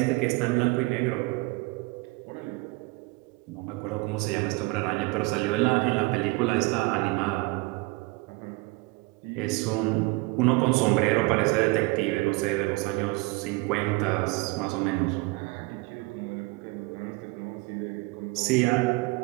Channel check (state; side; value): quieter; left; 24.0 dB